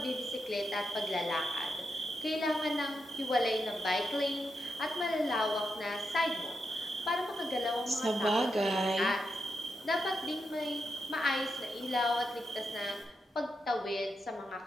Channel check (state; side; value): normal; both; correlation 0.85